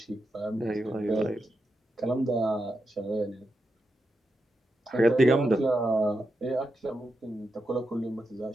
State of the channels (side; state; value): both; normal; correlation 0.87